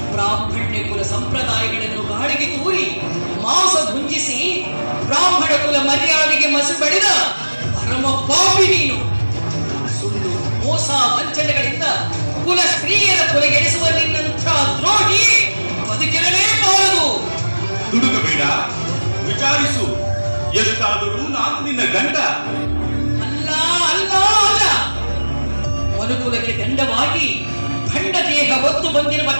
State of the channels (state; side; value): inverted; both; correlation -1.00